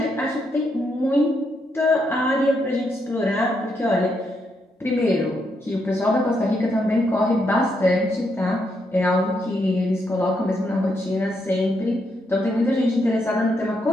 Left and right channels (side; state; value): both; normal; correlation 0.79